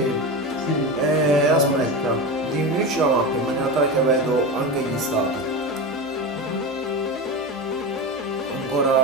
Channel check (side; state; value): both; normal; correlation 0.22